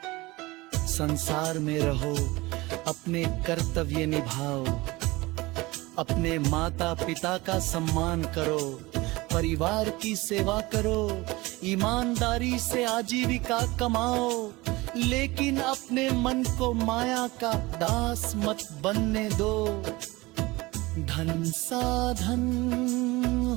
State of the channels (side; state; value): left; quieter; 21.6 dB